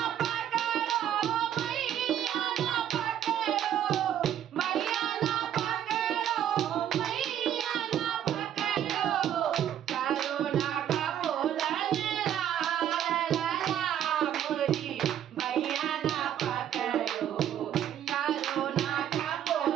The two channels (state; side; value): quieter; left; 10.4 dB